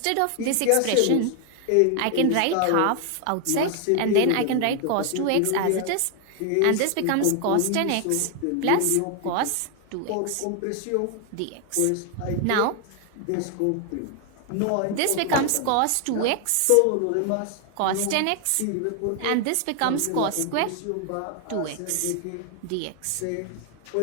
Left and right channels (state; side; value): different; both; correlation 0.00